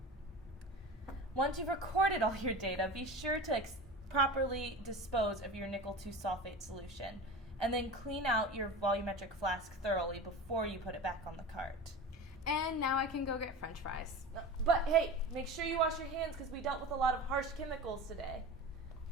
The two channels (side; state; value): both; normal; correlation 0.31